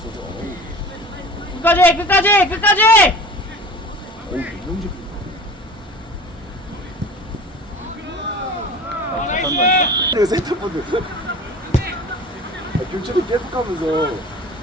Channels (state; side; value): normal; both; correlation 0.39